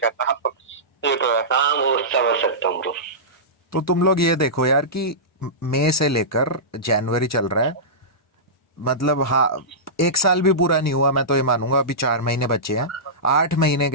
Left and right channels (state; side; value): normal; both; correlation -0.17